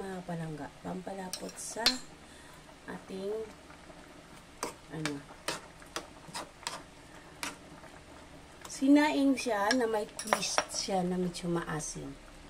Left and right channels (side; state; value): both; identical; correlation 1.00